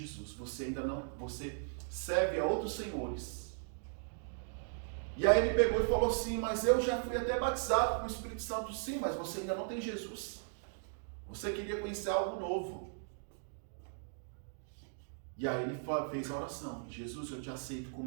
Você serve a outros senhores. E aí ele pegou e falou assim: mas eu já fui até batizado com o Espírito Santo. Sim, mas você ainda não tem Jesus. Você queria conhecer algo novo. E aí ele fez a oração: Jesus, eu te aceito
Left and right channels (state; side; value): silent; left; digital silence